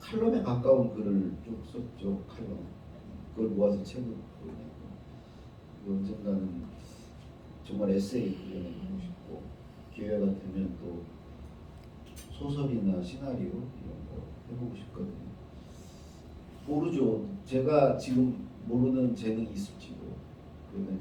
가까운 글을 쭉 썼죠. 칼럼. 그걸 모아서 책을 내고 언젠가는 정말 에세이 그려내고 싶고 기회가 되면 또 소설이나 시나리오 이런 거 해보고 싶거든요. 모르죠. 제가 지금 모르는 재능이 있을지도. 그러면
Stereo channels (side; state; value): both; identical; correlation 1.00